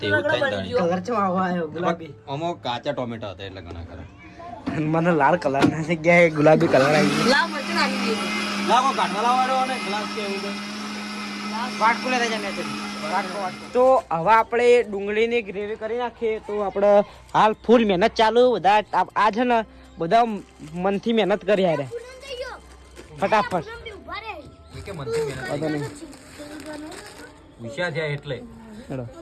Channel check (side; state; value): both; identical; correlation 1.00